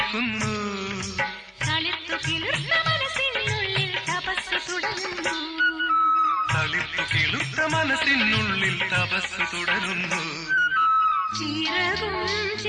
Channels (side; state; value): both; identical; correlation 1.00